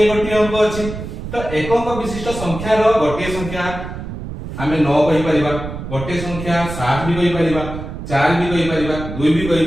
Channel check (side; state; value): right; noise; rumble, 9 dB below the sound